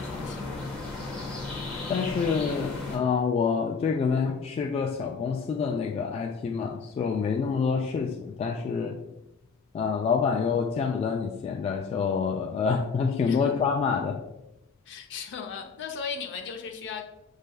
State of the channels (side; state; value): right; quieter; 5.3 dB